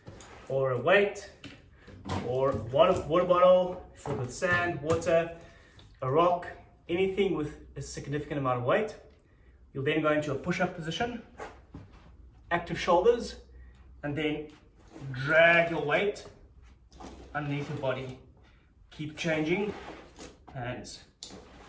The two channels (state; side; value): identical; both; correlation 1.00